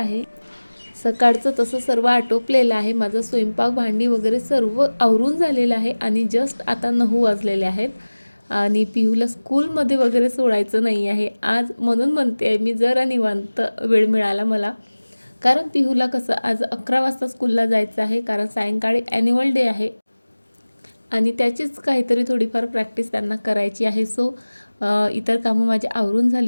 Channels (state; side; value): inverted; both; correlation -1.00